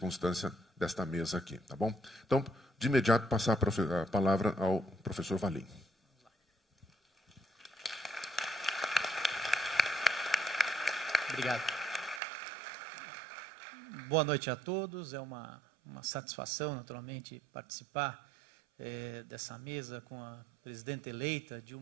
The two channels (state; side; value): drops out; left; at 12.2 s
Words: desta mesa aqui, tá bom? Então, de imediato, passar a palavra ao professor Valim. Obrigado. Boa noite a todos. É uma satisfação, naturalmente, participar dessa mesa com a presidenta eleita,